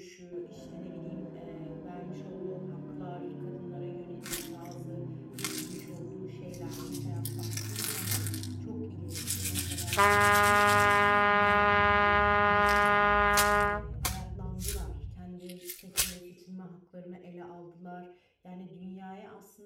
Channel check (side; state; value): both; identical; correlation 1.00